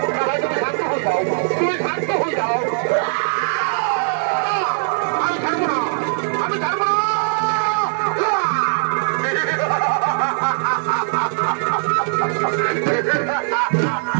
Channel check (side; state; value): left; silent; digital silence